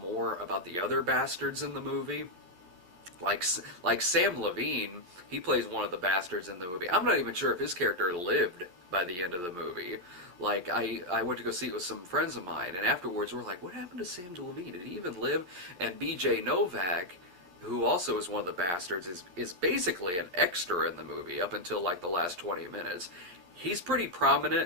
about the other bastards in the movie. Like Sam Levine, he plays one of the bastards in the movie. I'm not even sure if his character lived by the end of the movie. Like, I went to go see it with some friends of mine, and afterwards we're like, what happened to Sam Levine? Did he even live? And B.J. Novak, who also is one of the bastards, is basically an extra in the movie up until, like, the last 20 minutes. He's pretty prominent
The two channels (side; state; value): left; late; 11 ms